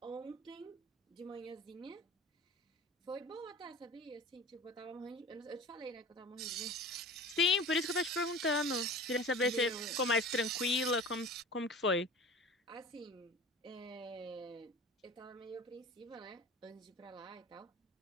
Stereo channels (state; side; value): normal; both; correlation 0.39